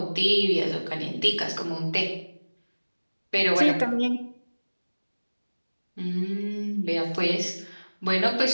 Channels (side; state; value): both; inverted; correlation -1.00